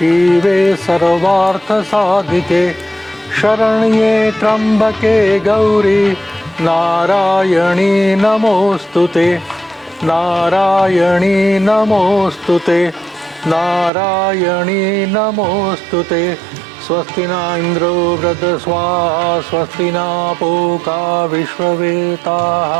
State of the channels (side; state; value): left; drops out; at 13.9 s